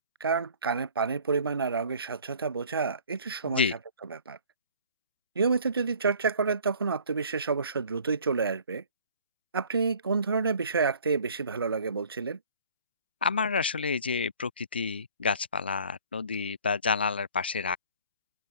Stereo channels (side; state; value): both; inverted; correlation -0.51